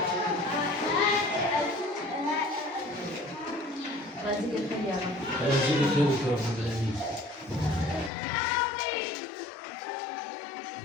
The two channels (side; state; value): right; drops out; at 8.1 s